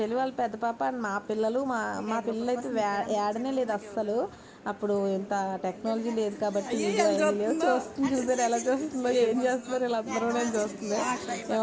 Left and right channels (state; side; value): identical; both; correlation 1.00